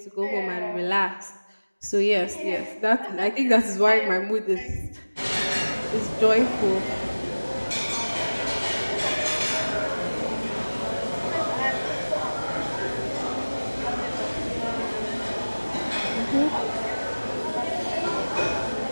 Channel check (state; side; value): inverted; both; correlation -1.00